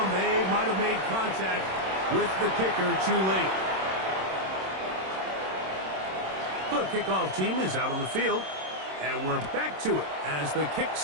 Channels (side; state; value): left; late; 26 ms